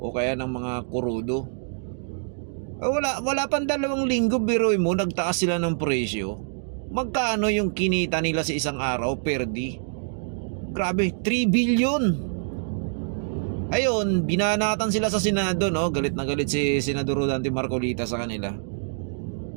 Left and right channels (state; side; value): silent; left; digital silence